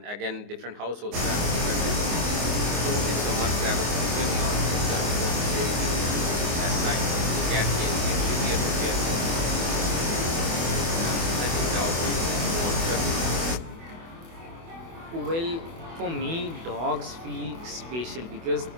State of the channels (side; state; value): left; late; 24 ms